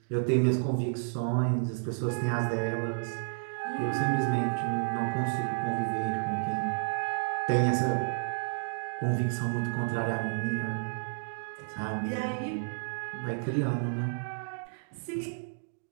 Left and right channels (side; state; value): left; silent; digital silence